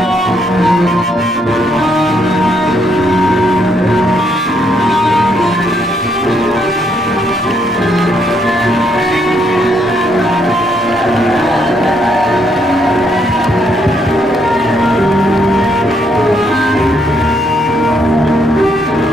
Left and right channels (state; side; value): normal; both; correlation 0.73